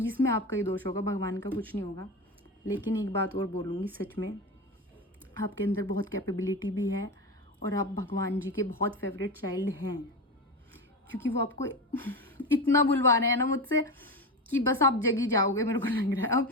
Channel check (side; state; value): both; normal; correlation 0.21